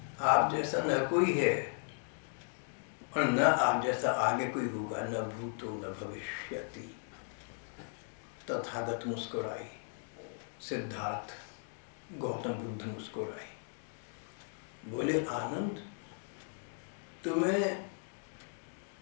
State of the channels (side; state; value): right; silent; 54 dB below the other